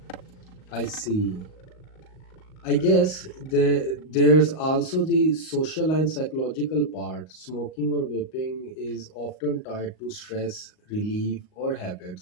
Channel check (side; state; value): right; late; 38 ms